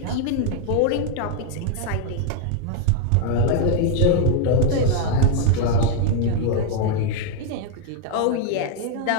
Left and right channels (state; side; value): different; both; correlation 0.00